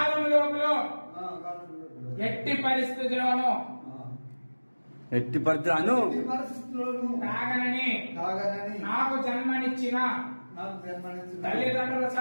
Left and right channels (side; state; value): both; inverted; correlation -1.00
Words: లోపల ఎట్టి పరిస్థితుల్లోనూ తాగనని నాకు జన్మనిచ్చిన తల్లిదండ్రుల